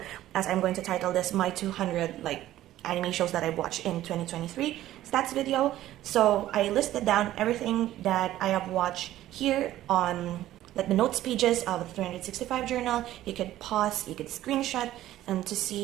as I'm going to title this my 200 like anime shows that I watched in 2023 stats video. So I listed down everything that I have watched here on like the notes pages of the 365 journal. You could pause, you could screenshot, and to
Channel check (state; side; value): quieter; left; 14.0 dB